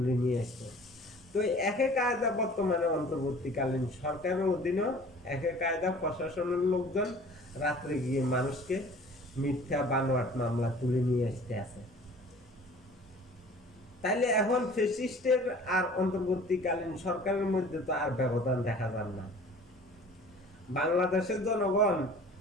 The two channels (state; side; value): normal; both; correlation 0.47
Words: নিয়ে আসতো। তো একই কায়দা বর্তমানে অন্তর্বর্তীকালীন সরকারের অধীনে একই কায়দা প্রশাসনের লোকজন রাত্রে গিয়ে মানুষকে মিথ্যা বানোয়াট মামলা তুলে নিয়ে আসতে আছে। তাইলে এখন ফ্যাসিস্টের আর অন্তর্বর্তীকালীন সরকারের মধ্যে তো আর ব্যবধান দেখা যায় না। বাংলাদেশের জনগণ